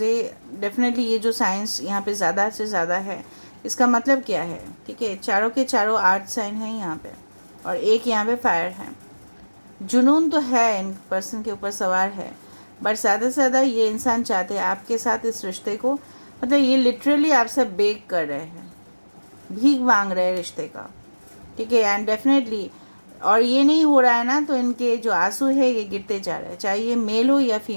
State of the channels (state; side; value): inverted; both; correlation -1.00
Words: ये डेफिनेटली ये जो साइंस यहाँ पे ज़्यादा से ज़्यादा है, इसका मतलब क्या है? ठीक है, चारों के चारों आर्ट साइन हैं यहाँ पे, और एक यहाँ पे फायर है। जुनून तो है, इन पर्सन के ऊपर सवार है, बट ज़्यादा से ज़्यादा ये इंसान चाहते हैं आपके साथ इस रिश्ते को, मतलब ये लिटरली आपसे बेग कर रहे हैं, भीख मांग रहे हैं रिश्ते का, ठीक है। एंड डेफिनेटली, और ये नहीं हो रहा है ना, तो इनके जो आंसू है ये गिरते जा रहे हैं, चाहे ये मेल हो या